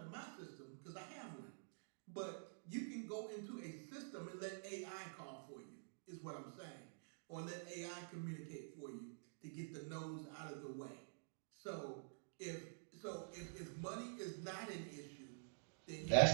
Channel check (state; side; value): silent; left; digital silence